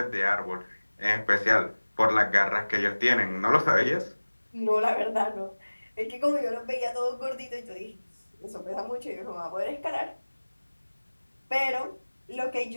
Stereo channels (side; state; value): both; inverted; correlation -1.00